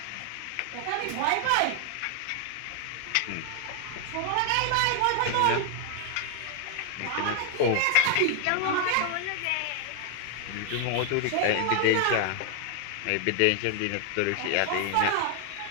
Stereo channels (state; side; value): different; both; correlation 0.00